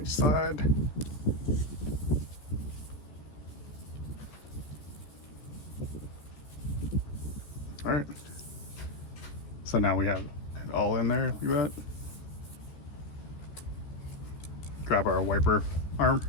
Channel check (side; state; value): right; late; 14 ms